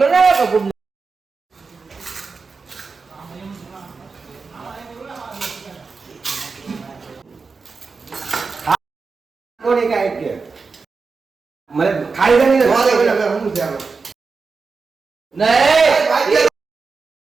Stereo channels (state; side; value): quieter; left; 4.6 dB